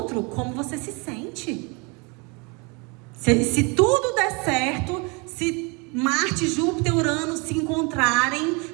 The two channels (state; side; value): quieter; left; 30.2 dB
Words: como você se sente. Se tudo der certo, se Marte, Júpiter, Urano se encontrarem